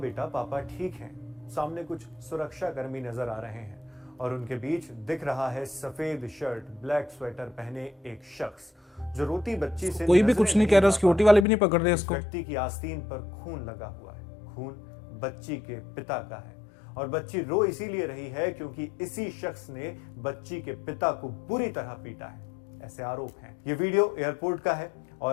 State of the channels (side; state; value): right; drops out; at 11.5 s